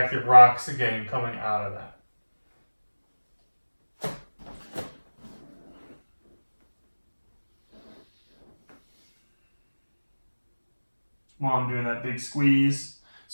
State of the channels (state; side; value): inverted; both; correlation -1.00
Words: rocks again coming out of that. While I'm doing that big squeeze.